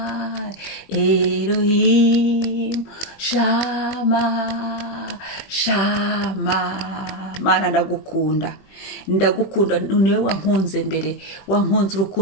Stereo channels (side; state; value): right; late; 21 ms